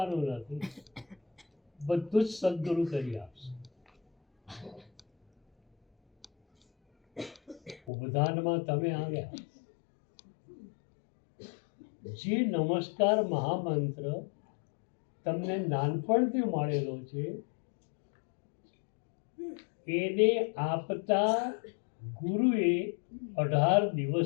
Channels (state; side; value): drops out; right; at 7.8 s